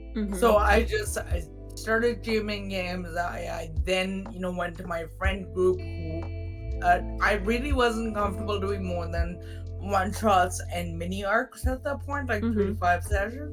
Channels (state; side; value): identical; both; correlation 1.00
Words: Mm-hmm. So I started GMing games. I then went to my friend group who I really wasn't comfortable doing more than one shots and mini arcs at that point, like three Mm-hmm. to five